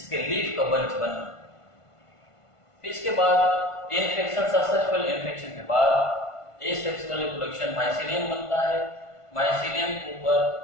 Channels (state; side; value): late; right; 1.5 ms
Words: लीफ का बंच बनना। इसके बाद इन्फेक्शन, सक्सेसफुल इन्फेक्शन के बाद एसेक्सुअल रिप्रोडक्शन माइसीलियम बनता है। माइसीलियम के ऊपर